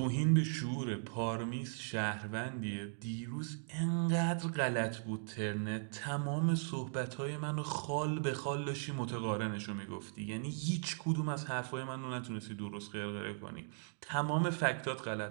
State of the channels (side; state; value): left; silent; digital silence